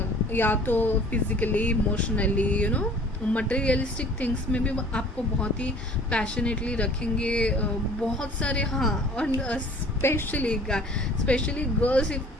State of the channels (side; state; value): both; normal; correlation 0.49